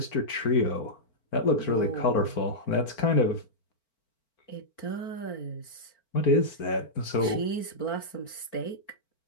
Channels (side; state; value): right; late; 4.4 ms